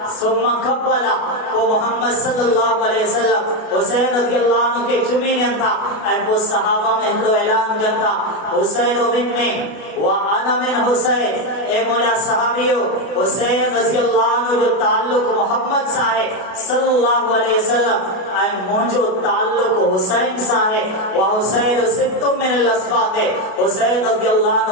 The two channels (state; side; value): late; right; 32 ms